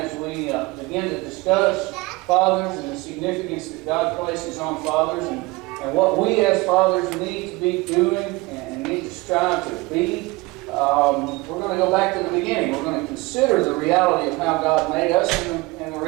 we begin to discuss fathers and the significance that God places on fathers and what we as fathers need to be doing and need to strive to be, we're going to go back to the beginning. We're going to consider the reality of how God made us and the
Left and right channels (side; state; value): left; quieter; 23.0 dB